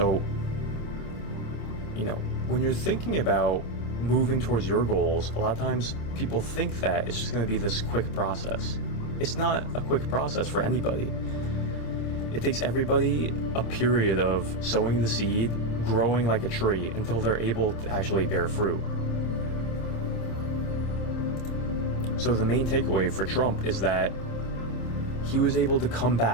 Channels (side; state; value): right; late; 26 ms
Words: when you're thinking about moving towards your goals, a lot of times people think that it's just going to be this quick process. It's not a quick process for anybody. It takes everybody a period of sowing the seed, growing like a tree until they're able to actually bear fruit. So the main takeaway for Trump is that he was able to come